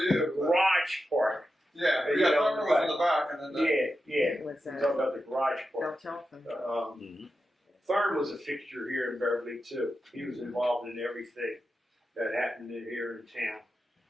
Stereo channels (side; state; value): both; normal; correlation 0.90